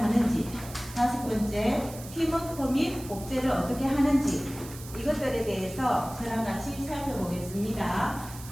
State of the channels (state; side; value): noise; right; hiss, 15 dB below the sound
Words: 다섯 번째 팀워크 및 복제를 어떻게 하는지, 이것들에 대해서 저랑 같이 살펴보겠습니다.